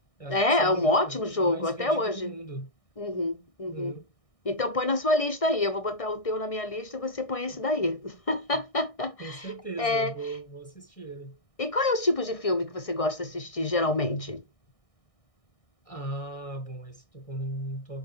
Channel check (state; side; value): late; right; 1.6 ms